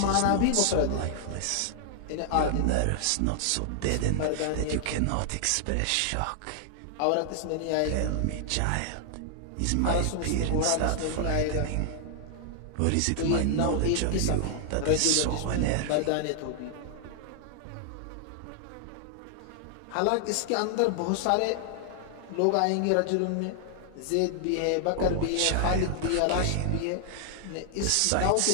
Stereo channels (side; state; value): both; different; correlation 0.00